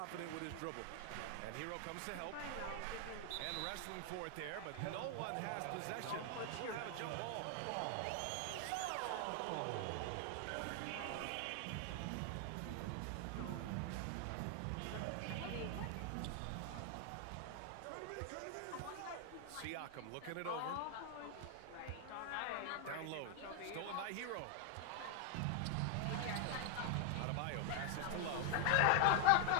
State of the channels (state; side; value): different; both; correlation 0.00